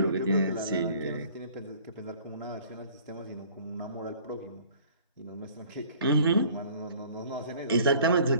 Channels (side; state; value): both; inverted; correlation -0.52